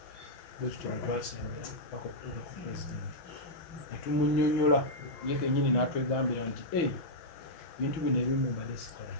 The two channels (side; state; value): right; late; 6.1 ms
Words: bwekityo bwe twasembera paka okutuuka ku pulezidenti netumunyonyola ye kennyini n'atwegambira nti bintu bino ebimu mbadde sikola